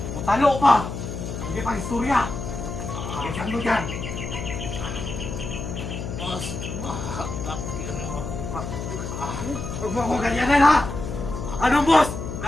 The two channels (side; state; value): left; noise; hum, 6 dB below the sound